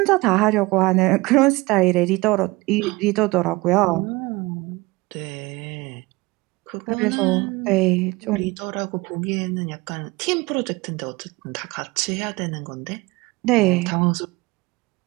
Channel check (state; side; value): quieter; left; 22.5 dB